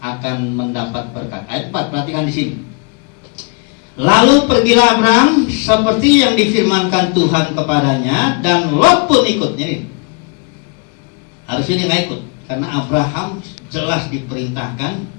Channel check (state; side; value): quieter; right; 34.8 dB